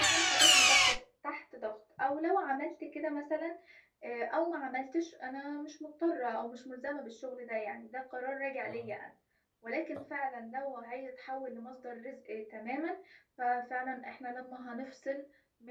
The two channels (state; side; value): identical; both; correlation 1.00